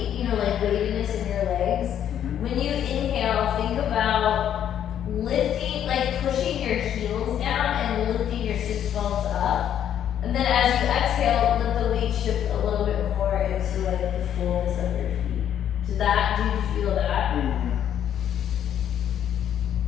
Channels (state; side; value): quieter; right; 9.9 dB